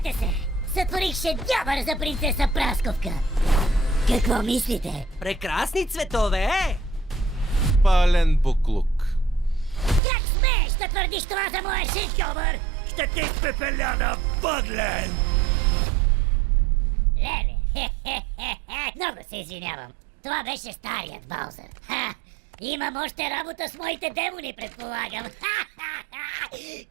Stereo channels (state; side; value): drops out; left; at 10.0 s